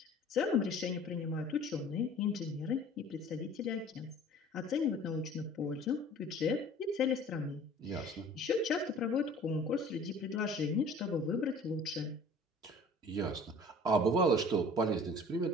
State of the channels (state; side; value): normal; both; correlation 0.47